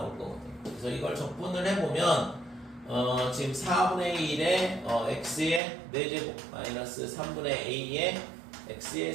거거든요. 그래서 이걸 적분을 해보면 지금 4분의 1의 x의 4제곱 마이너스 3분의 a의 x의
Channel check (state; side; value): drops out; left; at 5.6 s